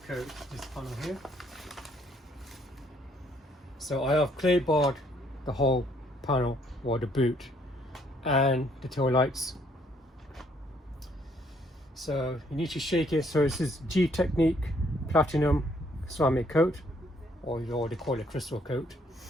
coat this panel here. So I have clay barred the whole panel, or the boot, and the tail lights. So you need to shake it. So this is G Technique Platinum ceramic coat, or they call it crystal coat.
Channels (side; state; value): both; normal; correlation 0.66